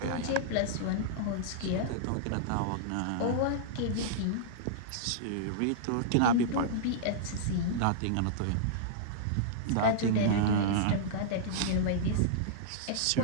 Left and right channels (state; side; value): different; both; correlation -0.03